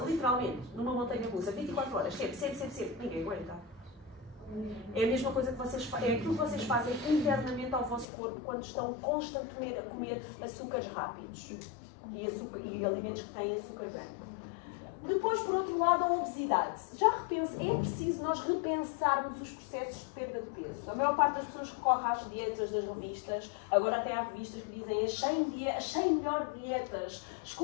literalmente, numa montanha russa, 24 horas, sempre, ninguém aguenta. É a mesma coisa que vocês fazem, é aquilo que vocês fazem internamente ao vosso corpo quando estão constantemente a comer açúcares rápidos e alimentos que têm açúcar branco. Depois, por outro lado, a obesidade. É preciso nós repensarmos os processos de perda de peso. A maior parte das pessoas recorre às dietas das revistas, agora até há revistas que dizem as 100 melhores dietas,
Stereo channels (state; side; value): drops out; right; at 8.1 s